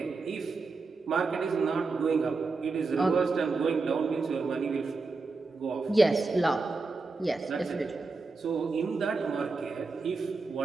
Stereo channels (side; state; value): left; quieter; 4.0 dB